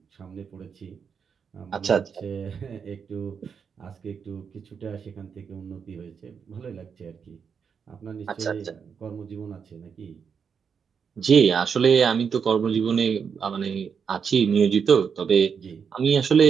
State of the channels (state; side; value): quieter; left; 6.6 dB